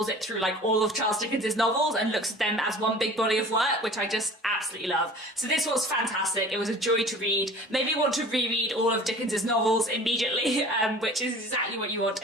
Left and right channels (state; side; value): normal; both; correlation 0.43